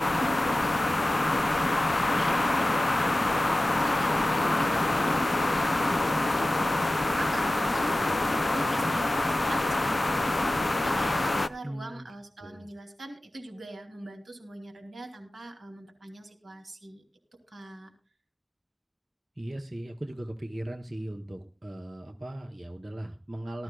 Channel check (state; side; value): normal; both; correlation 0.96